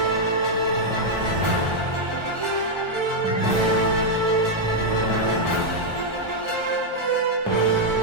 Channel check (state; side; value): late; left; 1.3 ms